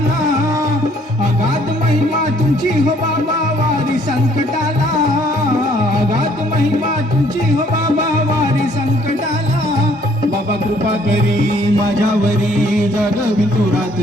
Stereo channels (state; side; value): normal; both; correlation 0.62